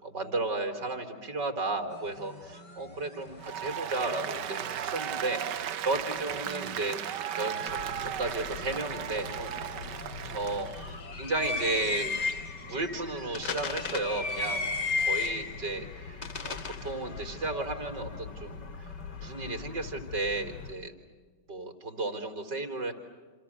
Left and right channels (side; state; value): left; late; 5.2 ms